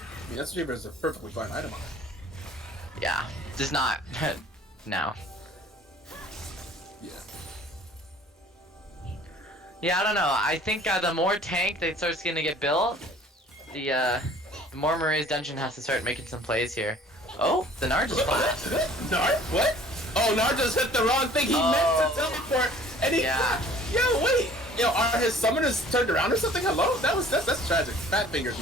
mean, Essence Reaver is a perfectly fine item on it. Yeah, just not now. Yeah. Yeah, I don't know. I think the more tank that starts going to get built, the more Maria's Dungeon has to start making some plays here. Oh, the Nard just flashed. Nard? What? Oh, Nard just hit the wrong thing. He meant to teleport, and he. Yo, wait. Yo, are his summoners turned around or something? Hello? That's tragic. Fat fingers,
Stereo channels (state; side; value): normal; both; correlation 0.51